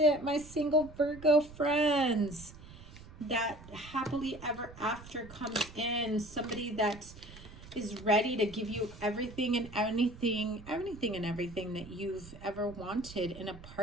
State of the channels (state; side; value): noise; right; rumble, 17 dB below the sound